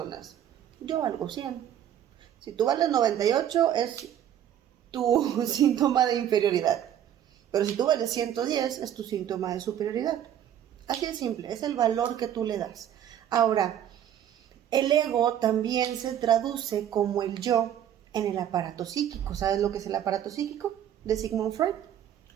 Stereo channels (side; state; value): left; quieter; 10.4 dB